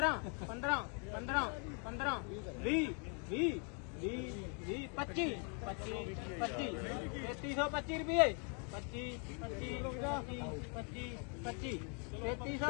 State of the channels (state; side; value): quieter; right; 38.9 dB